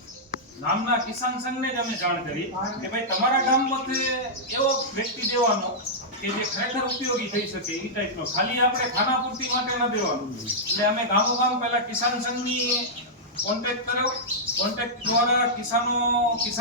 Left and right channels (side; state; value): both; normal; correlation -0.10